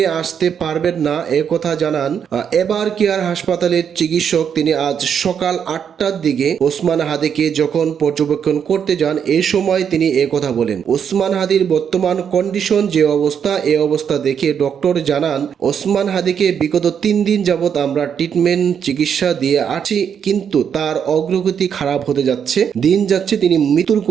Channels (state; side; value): quieter; left; 7.8 dB